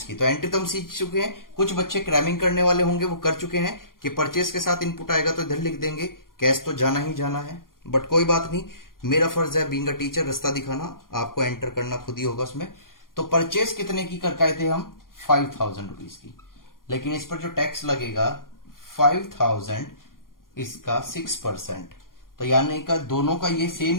की। तो एंट्री तो हम सीख चुके हैं, कुछ बच्चे क्रैमिंग करने वाले होंगे वो कर चुके हैं कि परचेस के साथ इनपुट आएगा तो इधर लिख देंगे, कैश तो जाना ही जाना है। बट कोई बात नहीं, मेरा फर्ज है बीइंग अ टीचर रास्ता दिखाना, आपको एंटर करना खुद ही होगा उसमें। तो परचेस कितने की करके आए थे हम? 5000 रुपीज की, लेकिन इस पर जो टैक्स लगेगा 5000, इसका 6%। तो यानी का दोनों का ये सेम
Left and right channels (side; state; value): right; late; 0.91 ms